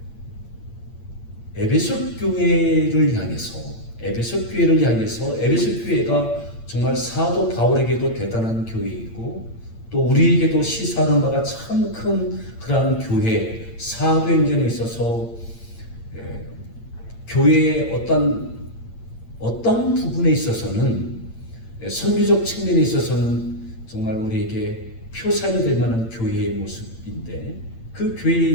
에베소 교회를 향해서 에베소 교회가 정말 사도 바울에게도 대단한 교회이고 또 우리에게도 시사하는 바가 참 큰 그러한 교회, 사도행전에 있어서 교회의 어떤 부분에 있어서는 선교적 측면에 있어서는 정말 우리에게 표상이 될 만한 교회의 모습인데 그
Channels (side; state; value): right; late; 8.8 ms